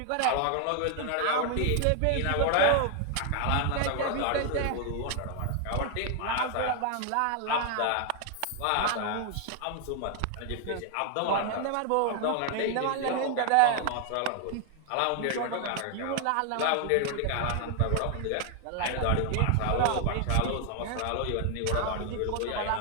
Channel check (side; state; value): both; different; correlation 0.00